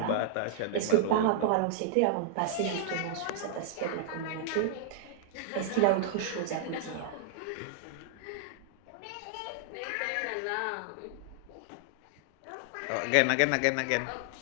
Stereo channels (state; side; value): different; both; correlation -0.01